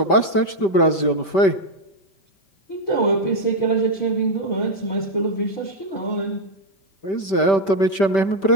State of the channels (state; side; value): late; right; 5.1 ms